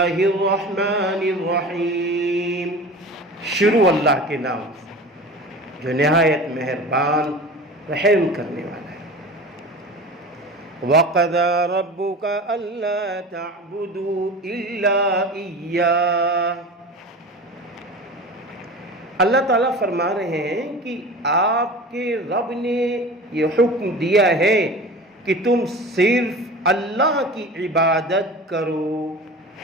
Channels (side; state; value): both; normal; correlation 0.35